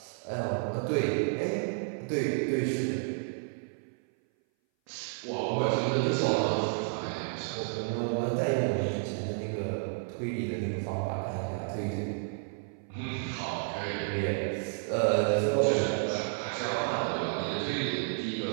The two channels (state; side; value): silent; left; 57 dB below the other